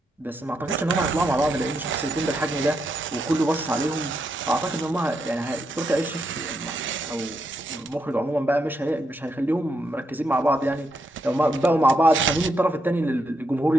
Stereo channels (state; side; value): normal; both; correlation 0.81